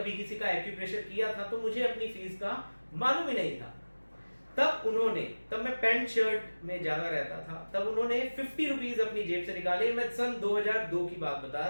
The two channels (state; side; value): inverted; both; correlation -1.00